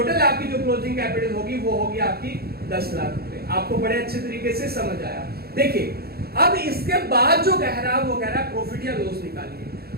आपकी जो क्लोजिंग कैपिटल होगी वो होगी आपकी 10 लाख रुपए। आपको बड़े अच्छे तरीके से समझ आया। देखिए अब इसके बाद जो कह रहा है वो कह रहा है प्रॉफिट या लॉस निकालिए।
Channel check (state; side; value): late; left; 0.45 ms